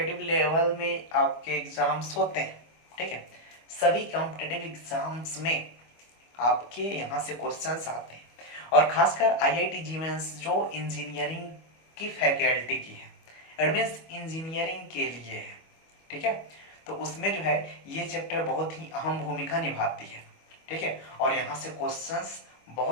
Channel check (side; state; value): right; late; 25 ms